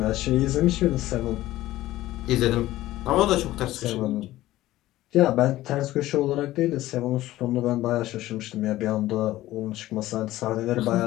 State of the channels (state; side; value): quieter; right; 15.8 dB